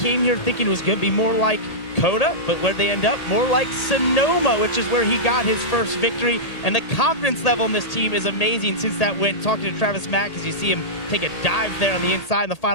here thinking it was going to be more like Coda, but where'd they end up? More like Sonoma, which is where he got his first victory. And the confidence level in this team is amazing since that win. Talking to Travis Mack as you see him take a dive there on the inside in the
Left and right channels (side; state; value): right; late; 1.8 ms